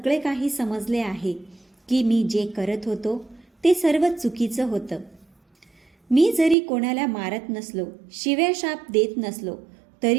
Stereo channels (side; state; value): left; drops out; at 6.6 s